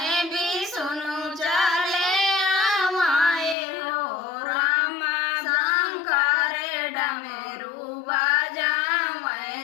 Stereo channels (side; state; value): right; drops out; at 3.6 s